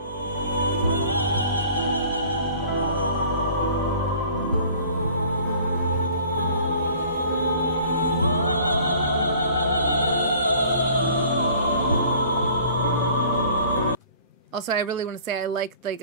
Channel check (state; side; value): inverted; both; correlation -0.50